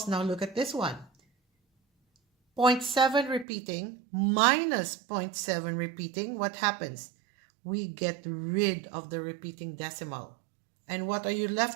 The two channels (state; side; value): drops out; left; at 3.5 s